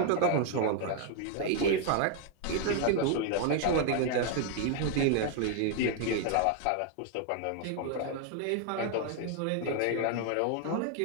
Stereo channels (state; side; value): different; both; correlation 0.00